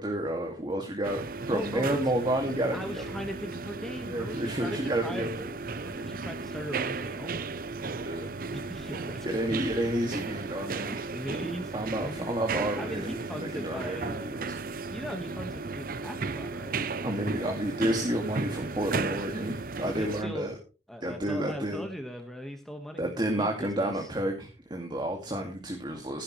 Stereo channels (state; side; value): normal; both; correlation 0.58